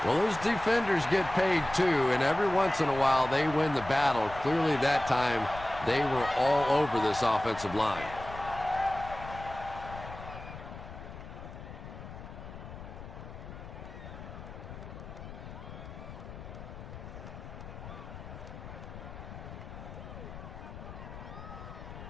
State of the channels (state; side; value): noise; left; rumble, 12 dB below the sound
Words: Well, those defenders get paid too, and every once in a while they win the battle. Clearly that time they were all over this offensive line.